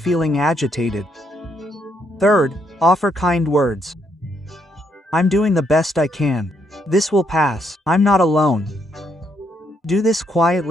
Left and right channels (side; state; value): both; normal; correlation 0.75